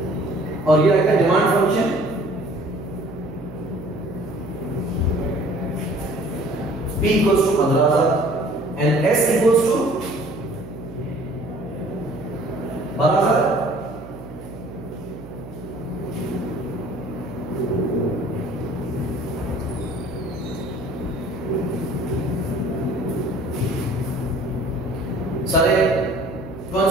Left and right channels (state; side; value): noise; right; hum, 14 dB below the sound